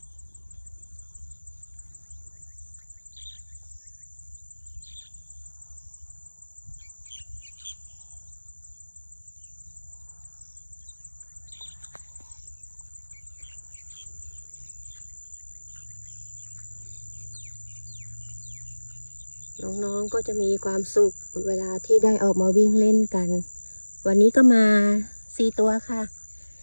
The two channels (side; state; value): both; inverted; correlation -1.00